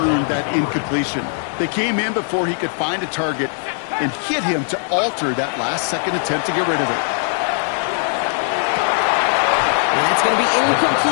that incompletion. They came in before he could find a target and hit him to alter that last-second attempt to get rid of it. And that's going to be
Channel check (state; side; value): silent; right; digital silence